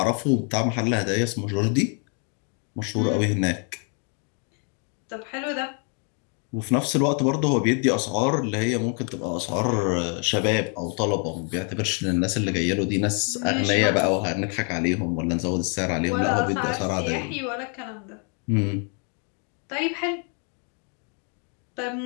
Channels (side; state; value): right; quieter; 39.6 dB